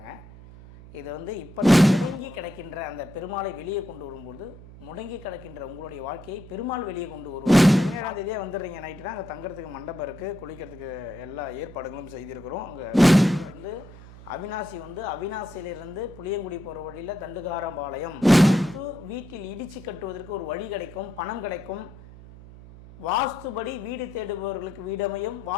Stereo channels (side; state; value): right; noise; hum, 18 dB below the sound